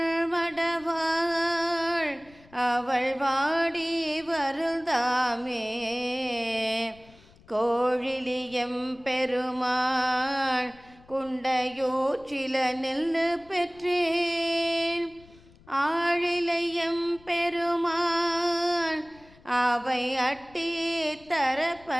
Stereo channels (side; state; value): left; noise; rumble, 26 dB below the sound